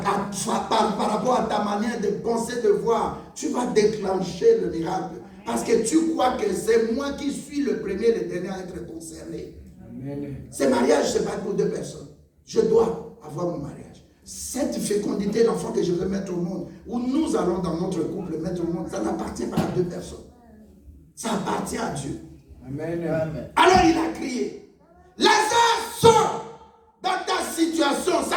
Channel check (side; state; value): both; identical; correlation 1.00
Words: rapport à ta manière de penser, de voir, tu vas déclencher le miracle. Parce que tu crois que c'est moi qui suis le premier, le dernier à être concerné. Amen. Ce mariage, ce n'est pas pour deux personnes. Je dois avoir mon mariage. Cette fécondité d'enfant que je veux mettre au monde, où nous allons dans notre couple mettre au monde, ça n'appartient pas à deux personnes. Ça appartient à Dieu. Amen. Alors il a crié, Lazare, sort dans ta situation.